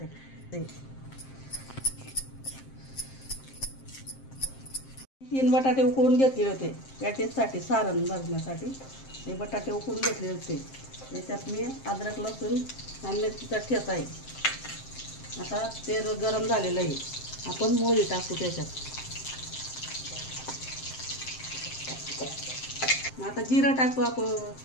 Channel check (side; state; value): right; late; 7.6 ms